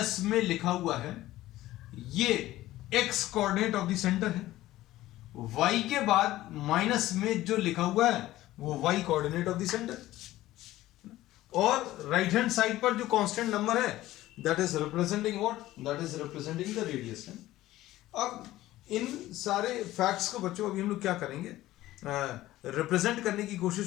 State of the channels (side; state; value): right; quieter; 15.8 dB